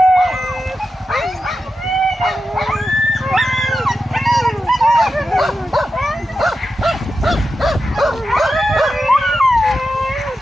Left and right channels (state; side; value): normal; both; correlation 0.90